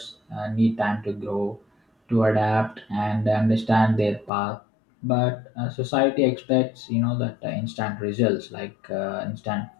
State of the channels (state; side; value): drops out; right; at 4.3 s